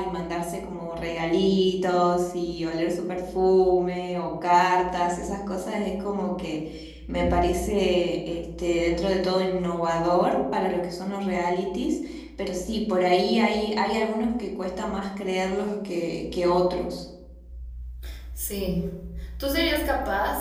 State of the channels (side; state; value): both; identical; correlation 1.00